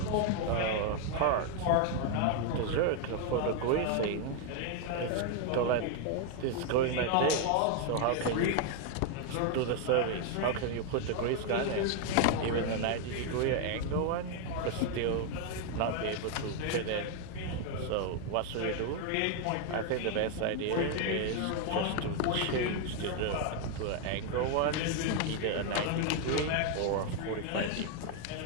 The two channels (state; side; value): different; both; correlation 0.01